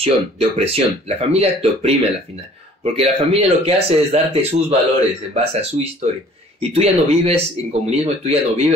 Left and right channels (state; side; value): normal; both; correlation 0.53